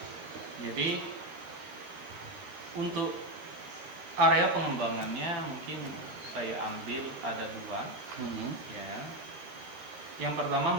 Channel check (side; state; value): left; late; 13 ms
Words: Jadi untuk area pengembangannya mungkin saya ambil ada 2. Ya. Yang